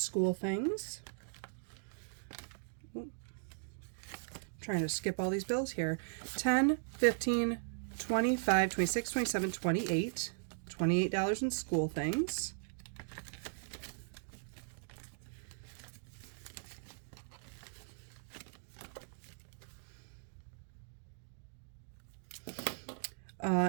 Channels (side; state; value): left; silent; digital silence